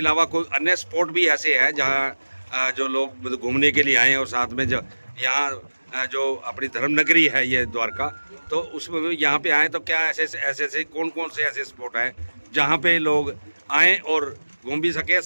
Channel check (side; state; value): both; inverted; correlation -1.00